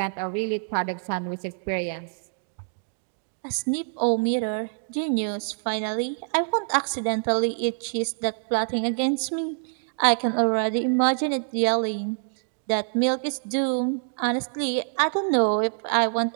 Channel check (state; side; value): silent; left; digital silence